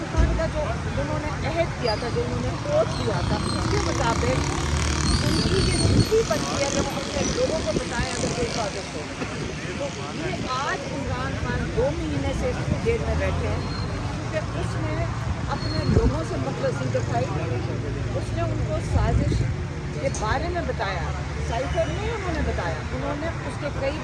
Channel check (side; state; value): both; identical; correlation 1.00